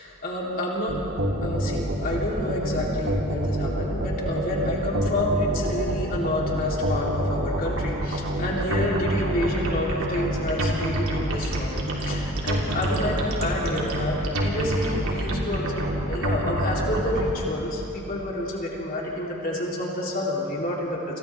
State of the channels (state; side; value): normal; both; correlation 0.44